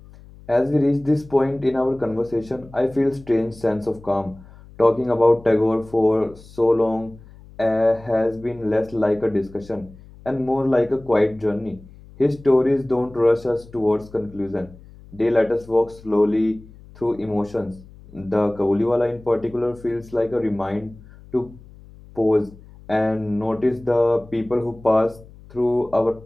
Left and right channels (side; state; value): left; noise; hum, 21 dB below the sound